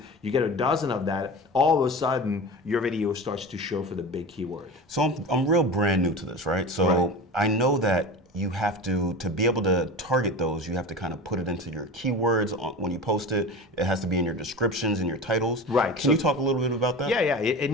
you get a dozen of that. All of a sudden, your video starts to show for the big keyword. So I'm real brand new to this, right? So Right. I know that you have to be able to target those, you have to kind of put it into your keywords when you post it. It has to be in your descriptions and your titles. Right. Can you talk a little bit about that? Yeah. It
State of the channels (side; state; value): both; normal; correlation 0.31